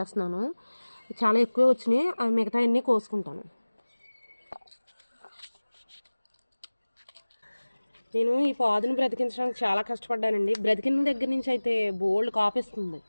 చాలా ఎక్కువ వచ్చినాయి, అవి మిగతా అన్నీ కోసుకుంటాను. నేను ఈ పాదును బ్రతికించడానికి చాలా కష్టపడ్డానండి. బ్రతికిన దగ్గర నుంచి అయితే బోల్డ్ కాపిస్తుంది.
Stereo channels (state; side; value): inverted; both; correlation -1.00